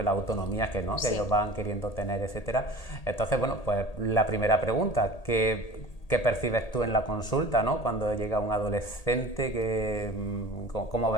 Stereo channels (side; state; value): right; late; 1.8 ms